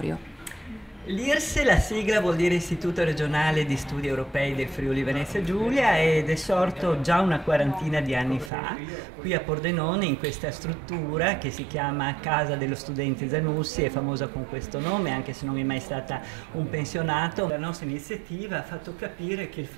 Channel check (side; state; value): left; drops out; at 8.5 s